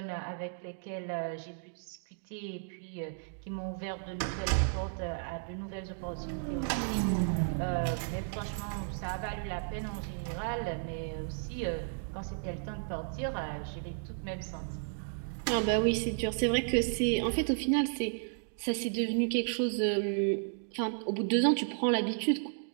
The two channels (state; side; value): silent; left; digital silence